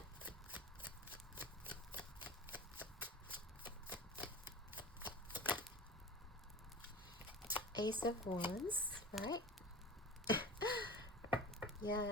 Ace of Wands, right?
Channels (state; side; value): normal; both; correlation 0.34